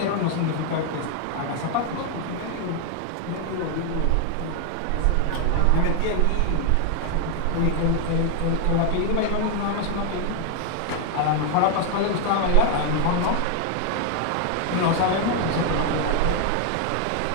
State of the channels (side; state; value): both; different; correlation 0.00